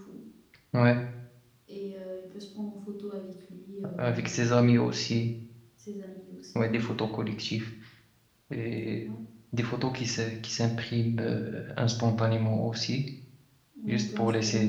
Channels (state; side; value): identical; both; correlation 1.00